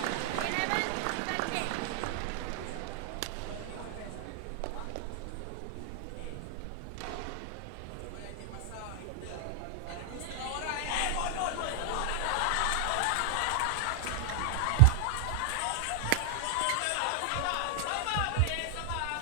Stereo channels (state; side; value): different; both; correlation 0.00